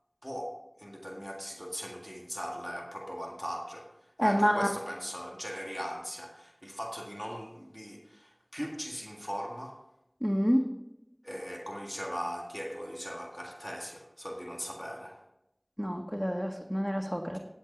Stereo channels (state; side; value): identical; both; correlation 1.00